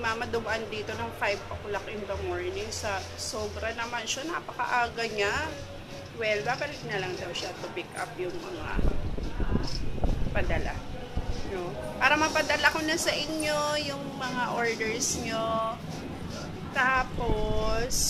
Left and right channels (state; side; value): identical; both; correlation 1.00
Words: dumaan dito ng 5 o'clock in the morning. Sobra naman siya, napakaaga niya. Well, babalik na lang daw siya to pick up yung mga padala. No? Para mapadala ko na sa inyo yung mga orders nyo.